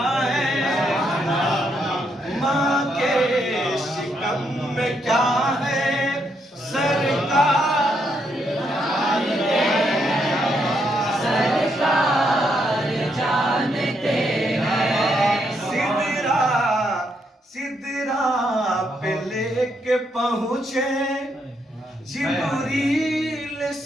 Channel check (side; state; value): both; normal; correlation 0.77